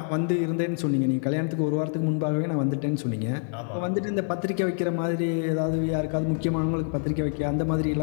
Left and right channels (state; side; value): silent; right; 61 dB below the other